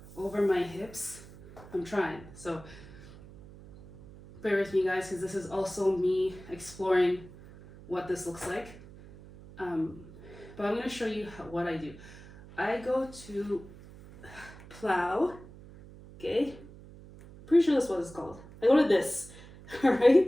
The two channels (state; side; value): noise; right; hum, 18 dB below the sound